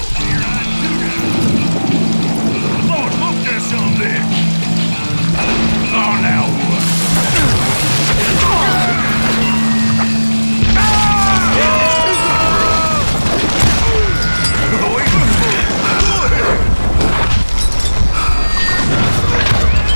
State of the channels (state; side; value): inverted; both; correlation -1.00